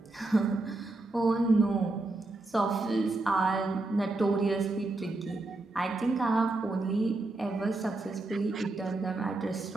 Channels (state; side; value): quieter; left; 3.0 dB